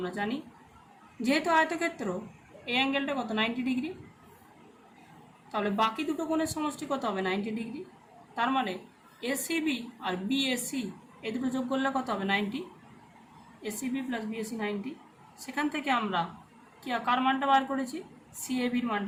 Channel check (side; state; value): both; identical; correlation 1.00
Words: জানি। যেহেতু আয়তক্ষেত্র এই অ্যাঙ্গেলটা কত 90 ডিগ্রি, তাহলে বাকি দুটো কোণের সমষ্টি কত হবে 90 ডিগ্রি। তার মানে এসিবি আর বিএসি এই দুটো যোগ করলে কত হবে 90, এসিবি প্লাস বিএসি 90। সেখান থেকে আমরা কি কার মানটা বার করেছি, সিএবির